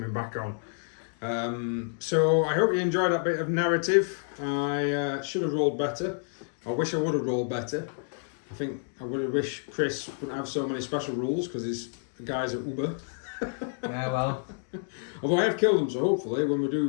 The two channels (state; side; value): silent; right; digital silence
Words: back on. So I hope you enjoyed that bit of narrative. I should have rolled better. I wish I would have rolled better. I think I would have wished Chris wouldn't have so many special rules because his guys are Uber. Yeah, well. Although I have killed him, so hopefully when we do